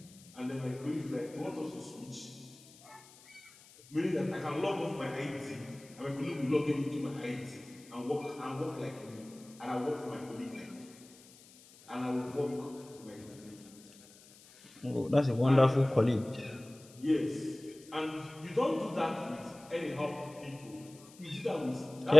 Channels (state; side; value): noise; left; hiss, 22 dB below the sound